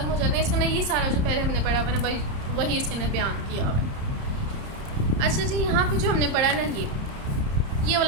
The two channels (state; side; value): late; left; 30 ms